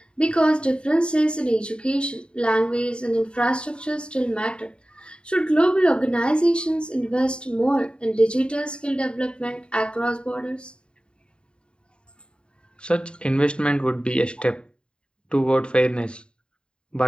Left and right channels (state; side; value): late; right; 0.053 ms